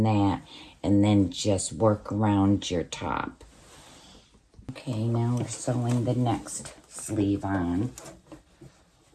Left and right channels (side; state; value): both; identical; correlation 1.00